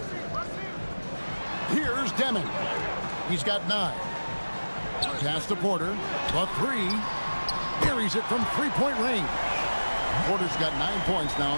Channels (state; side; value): inverted; both; correlation -1.00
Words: Here's Deming. He's got 9. Pass to Porter. The 3. Buries it from three-point range. Porter's got 9 points now